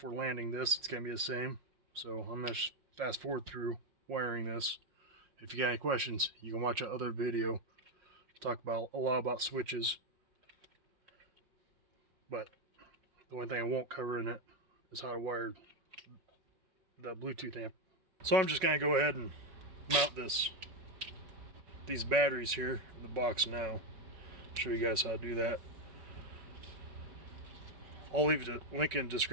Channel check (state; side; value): late; left; 5.4 ms